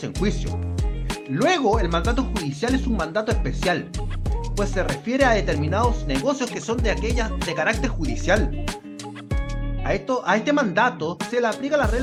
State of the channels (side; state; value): both; identical; correlation 1.00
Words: en juicio. Luego, el mandato judicial es un mandato especial, pues se refiere a determinados negocios que son de carácter judicial. A este mandato se le aplican las